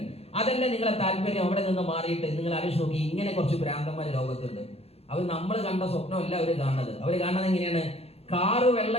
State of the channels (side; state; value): right; late; 0.29 ms